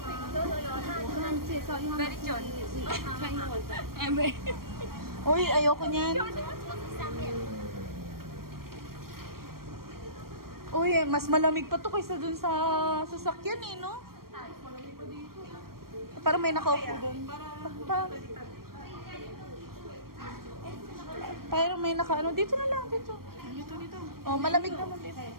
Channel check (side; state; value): left; late; 0.93 ms